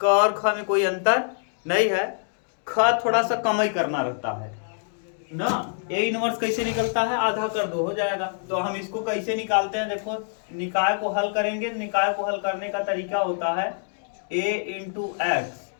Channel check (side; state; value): right; silent; digital silence